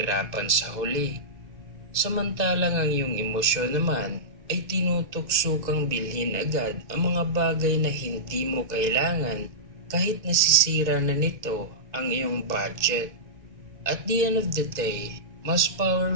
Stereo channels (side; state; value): left; late; 1.9 ms